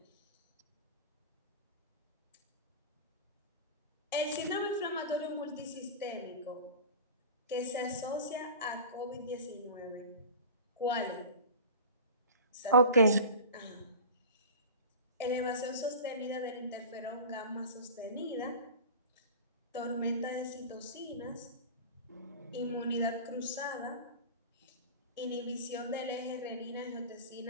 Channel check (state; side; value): inverted; both; correlation -0.34